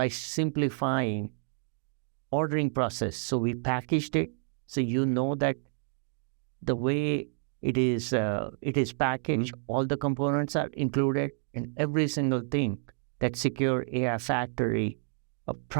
simplifying ordering process. So we packaged it, so you know that the way it is packaged, all the components are included, and every single thing that Secure AI Factory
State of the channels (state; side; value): silent; left; digital silence